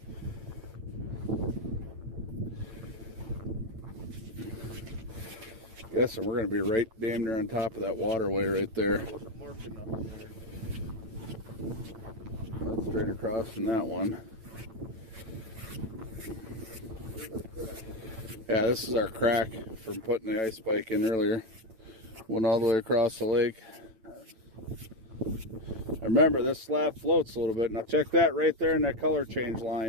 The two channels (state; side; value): late; left; 8.9 ms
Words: Yes, and we're gonna be right damn near on top of that waterway right there. Wasn't marking nothing there. That's straight across from that one. Yeah, this is our crack from putting the ice spike in earlier. Went all the way across the lake. Remember, this slab floats a little bit. Now check that right there in that color change